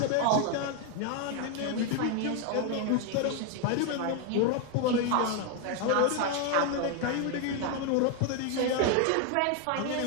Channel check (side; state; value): both; different; correlation 0.01